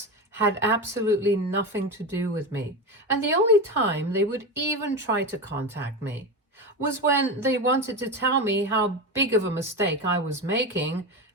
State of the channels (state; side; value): normal; both; correlation 0.20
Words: had absolutely nothing to do with me, and the only time they would even try to contact me was when they wanted to tell me how big of a mistake I was making